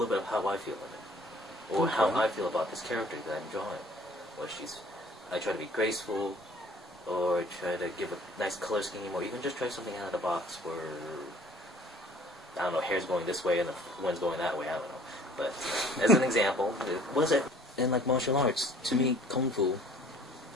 bit of how I feel in it, or how I feel about this character that I'm drawing. I try to be graceful, or try to give a nice color scheme, or even just try something out of the box where, I don't know, hair's going this way and the wind's going that way, I don't know. But as an example, was it in like martial arts? To me, Kung Fu,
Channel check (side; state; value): both; normal; correlation 0.54